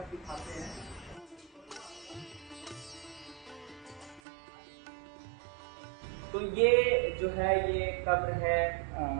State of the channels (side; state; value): left; drops out; at 4.2 s